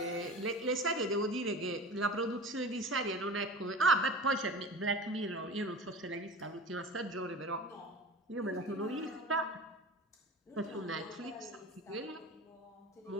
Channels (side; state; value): both; normal; correlation 0.34